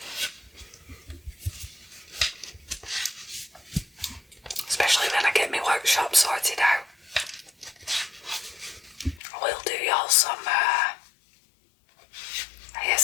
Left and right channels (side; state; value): right; drops out; at 9.2 s